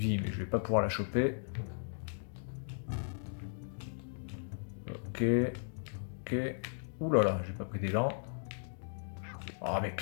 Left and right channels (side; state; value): right; silent; digital silence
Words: mais je vais pas pouvoir la choper. Ok. Ok. Ouh là là, j'ai pas pris d'élan. Oh, mais